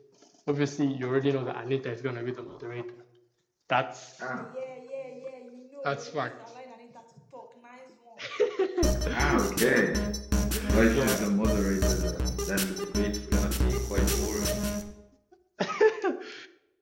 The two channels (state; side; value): identical; both; correlation 1.00